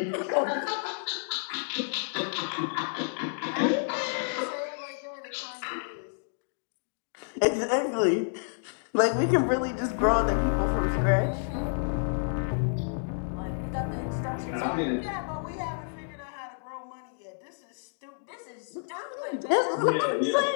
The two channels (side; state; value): right; silent; digital silence